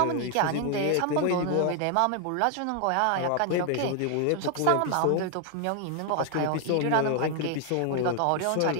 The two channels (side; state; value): both; different; correlation 0.00